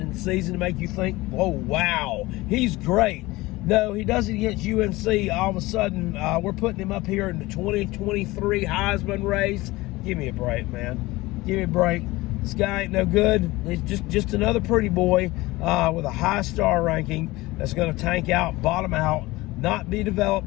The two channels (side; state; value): right; quieter; 20.2 dB